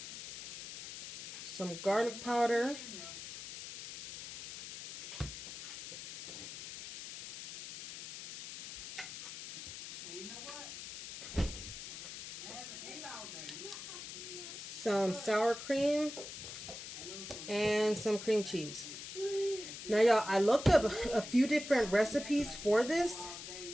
some garlic powder, some sour cream, and some cream cheese. Now, y'all, I looked up a few different recipes for this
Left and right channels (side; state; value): left; noise; hiss, 10 dB below the sound